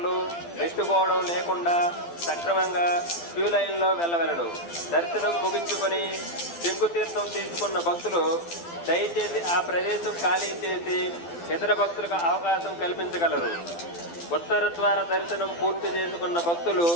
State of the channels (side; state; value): right; late; 12 ms